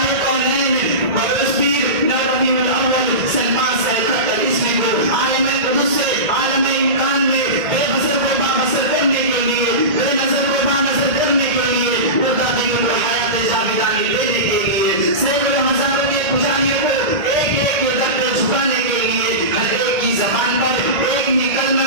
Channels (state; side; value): late; left; 1.8 ms